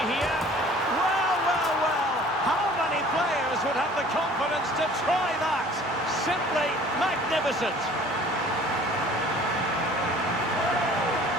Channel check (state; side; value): normal; both; correlation 0.50